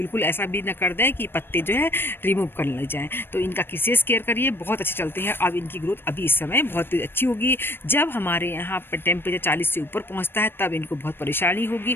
ऐसा भी ना कर दें कि पत्ते जो है रिमूव करने लग जाएँ। तो इनका विशेष केयर करिए, बहुत अच्छे चलते हैं। अब इनकी ग्रोथ अभी इस समय बहुत अच्छी होगी। जब हमारे यहाँ पर टेम्परेचर 40 से ऊपर पहुँचता है तब इनको बहुत परेशानी होगी,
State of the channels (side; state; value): right; late; 0.10 ms